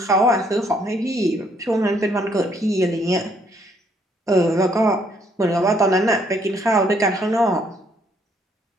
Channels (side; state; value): both; normal; correlation 0.68